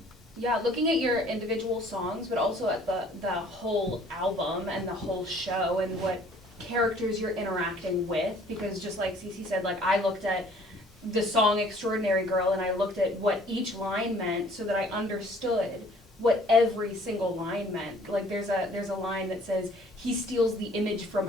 Yeah, looking at your individual songs, but also at the whole album and the whole show and what characters you're interacting with, because just like Cece said, I looked at the song Extraordinary Girl and I looked at what each line meant so that I understood what every single line meant. There's a line that says, he steals the image from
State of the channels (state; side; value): normal; both; correlation 0.56